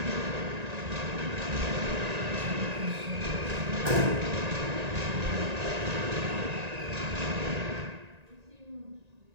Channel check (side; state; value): left; late; 1.9 ms